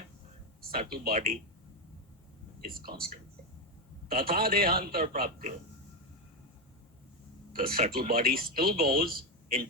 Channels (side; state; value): both; normal; correlation 0.10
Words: subtle body is constant. Tatha dehantar prapti. The subtle body still goes